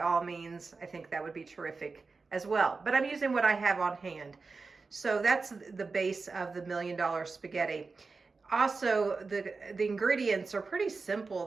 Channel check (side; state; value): left; quieter; 4.3 dB